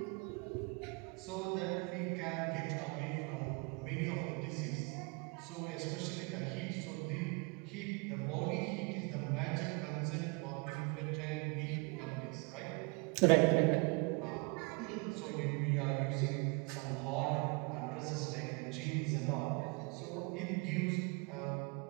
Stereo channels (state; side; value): quieter; left; 31.2 dB